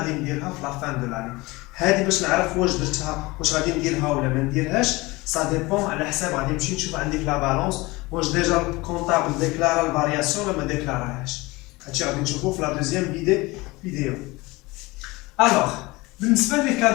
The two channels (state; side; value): quieter; right; 22.4 dB